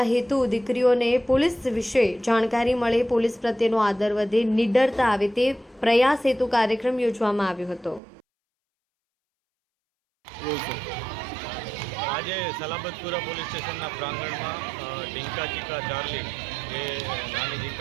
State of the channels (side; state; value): left; drops out; at 8.0 s